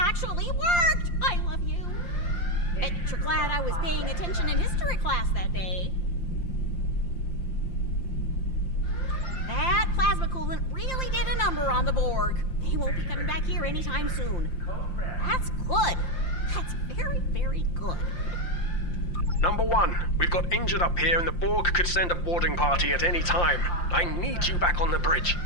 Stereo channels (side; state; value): right; late; 5.7 ms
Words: worked! I love you. Bet you're glad I was paying attention in history class that day. That plasma coolant really did a number on the Borg. They won't be coming back here anytime soon. That's good. That's very, very good. Number 1, we've got injured up here and the Borg could send a boarding party at any time. I need you back on the bridge.